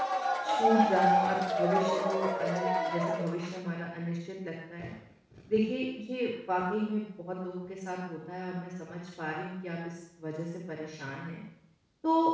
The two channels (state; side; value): identical; both; correlation 1.00